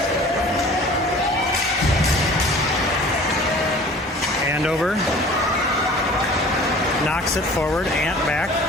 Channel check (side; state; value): both; normal; correlation 0.46